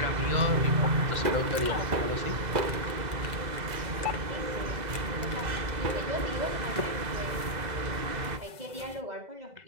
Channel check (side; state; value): left; late; 2.0 ms